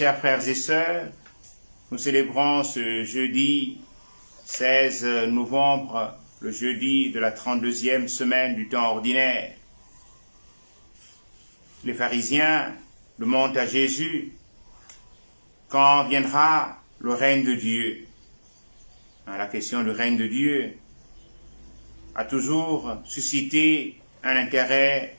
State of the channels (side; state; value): both; inverted; correlation -1.00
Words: frères et sœurs, nous célébrons ce jeudi 16 novembre, le jeudi de la 32e semaine du temps ordinaire. Les pharisiens demandent à Jésus quand viendra le règne de Dieu. La question du règne de Dieu a toujours suscité un intérêt